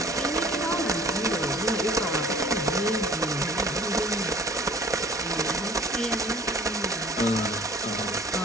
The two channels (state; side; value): normal; both; correlation 0.51